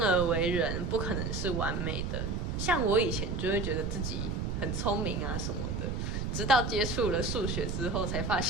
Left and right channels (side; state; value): right; noise; rumble, 2 dB below the sound